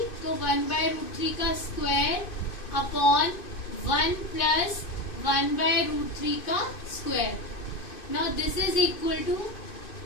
तो 1/√3 का स्क्वायर अपॉन 1 प्लस 1/√3 का square. Now this is equal to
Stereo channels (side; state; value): right; late; 2.5 ms